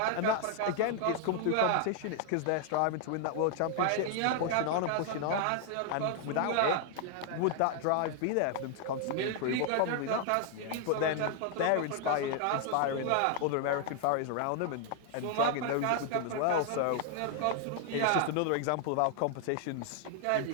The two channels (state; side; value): different; both; correlation 0.00